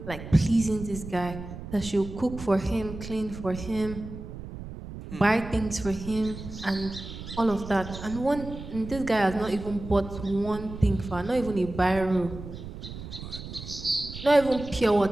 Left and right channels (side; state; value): right; noise; rumble, 11 dB below the sound